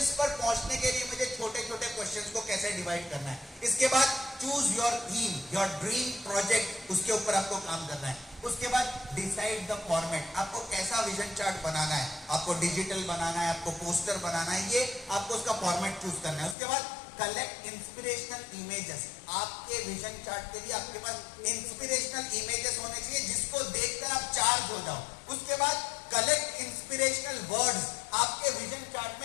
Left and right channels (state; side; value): drops out; right; at 16.6 s